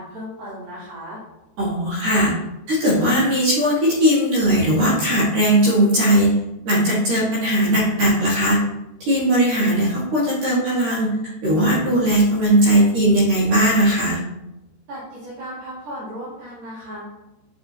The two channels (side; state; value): left; late; 13 ms